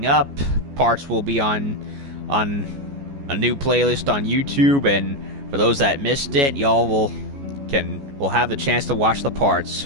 up. Parts will be on a new playlist on YouTube, and for those that missed it, y'all will have the chance to watch the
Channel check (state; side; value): late; left; 14 ms